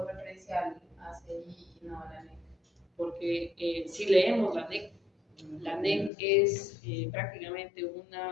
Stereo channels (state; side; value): drops out; right; at 6.1 s